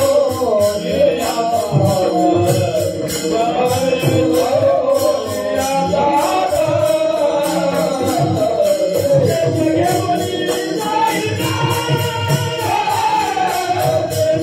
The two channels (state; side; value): identical; both; correlation 1.00